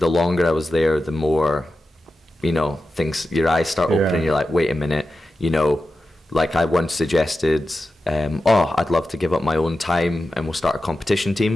longer I was there, the more, your eyes start opening. You're like, wait a minute, like I once suggested, I'd love to give up my own time and we'll start a competition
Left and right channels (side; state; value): both; normal; correlation 0.92